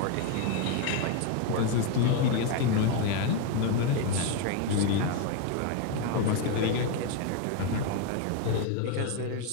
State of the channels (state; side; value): different; both; correlation 0.01